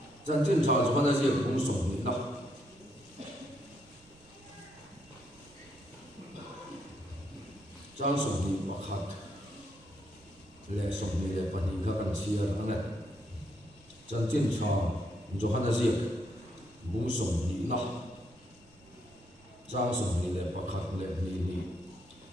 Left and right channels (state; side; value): noise; right; rumble, 27 dB below the sound